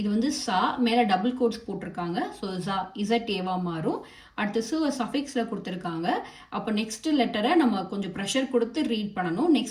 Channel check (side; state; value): both; identical; correlation 1.00